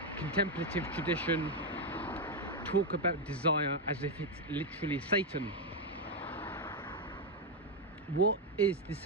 contemplative tradition, talk about desire as if it's literally Satan? What is the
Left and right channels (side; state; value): both; normal; correlation 0.03